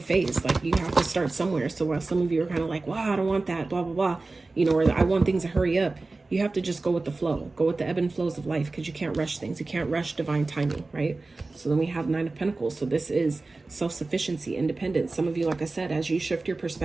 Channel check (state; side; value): quieter; left; 3.4 dB